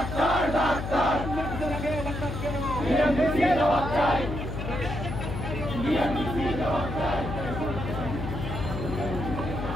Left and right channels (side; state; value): left; noise; hum, 5 dB below the sound